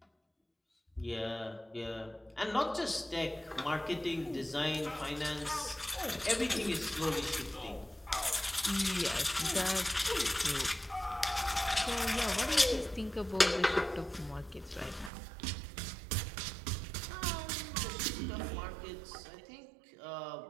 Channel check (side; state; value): left; drops out; at 15.1 s